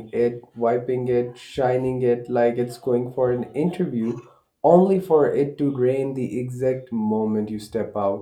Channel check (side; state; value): both; identical; correlation 1.00